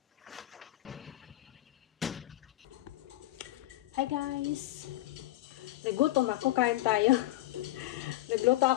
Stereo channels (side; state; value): right; quieter; 16.5 dB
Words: Hi guys! Nagutom ako, kain tayo. Nagluto